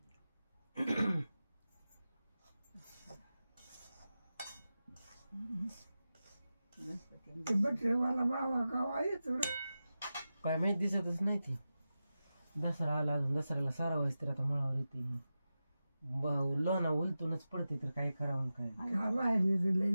बटरेवाला बाबा गावा येतो काय माहित दिसतच नाही ती. दसरा आला अजून दसऱ्याला सारा व्हायच तर आता मळावर येते लोणा उलटूनच पडते तर काय करावं काय बाहेर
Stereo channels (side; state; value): both; inverted; correlation -0.93